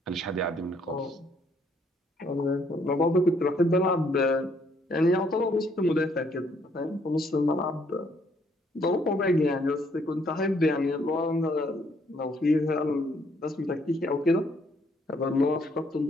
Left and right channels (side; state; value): both; normal; correlation 0.68